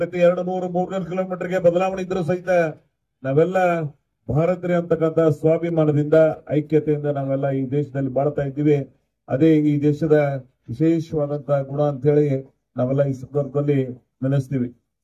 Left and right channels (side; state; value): both; identical; correlation 1.00